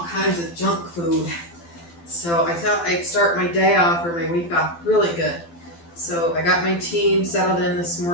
kinds of junk food. So I thought I'd start my day off or my week off really good. So I got my team settled in this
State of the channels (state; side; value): late; right; 12 ms